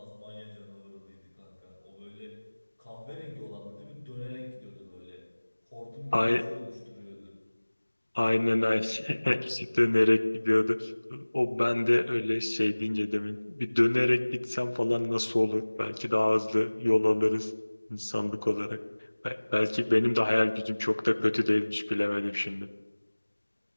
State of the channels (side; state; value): both; inverted; correlation -1.00